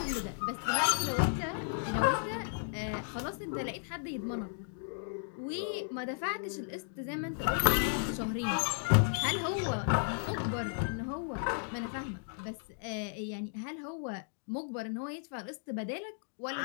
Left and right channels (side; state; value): right; silent; digital silence